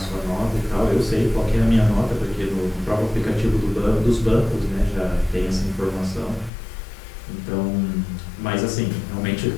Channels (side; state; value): right; drops out; at 6.5 s